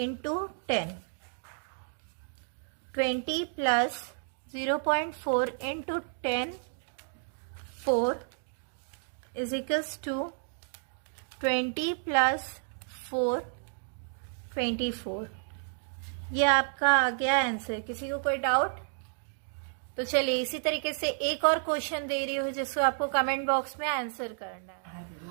10। 20 plus 0.4 into 10 4 is equals to 20 plus 4 24। ये आपका आ गया आंसर। किसी को कोई डाउट? तो चलिए इसी तरीके से एक और क्वेश्चन दे रही हूँ जिसको आपको कमेंट बॉक्स में आंसर करना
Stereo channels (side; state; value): left; silent; digital silence